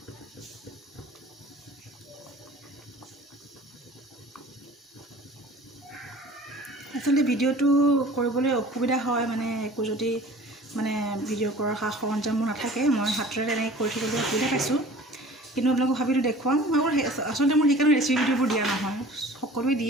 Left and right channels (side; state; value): both; normal; correlation 0.45